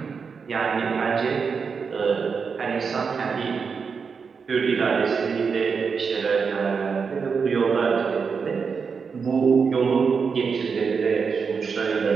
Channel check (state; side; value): quieter; left; 5.6 dB